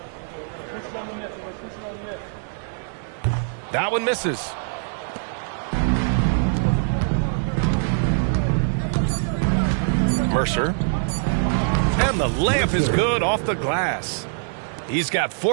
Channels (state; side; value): silent; left; digital silence